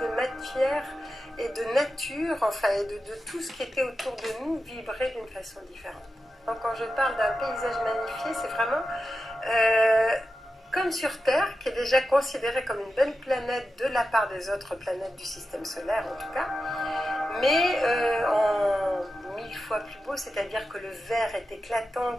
matière et de nature, enfin, et de tout ce qui était autour de nous vibraient d'une façon différente. Donc quand je parle d'un paysage magnifié, c'est vraiment comme sur Terre, qui est déjà considérée comme une belle planète de la part des autres planètes du système solaire en tout cas, mais en 1000 fois plus beau, c'est-à-dire que le vert est éclatant,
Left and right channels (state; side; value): normal; both; correlation 0.91